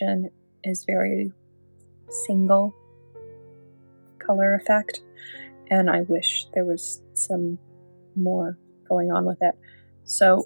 is very single color effect, and I wish there was some more going on with it.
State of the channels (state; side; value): inverted; both; correlation -1.00